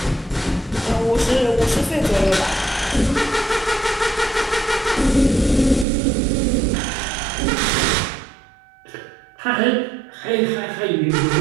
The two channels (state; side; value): drops out; left; at 5.9 s